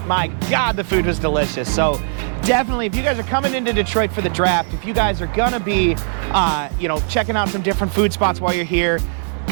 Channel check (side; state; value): left; silent; digital silence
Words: my God, the food was delicious. So definitely, if you guys are coming into Detroit for the draft, if you guys are gonna be, you know, checking out some different food spots while you're here,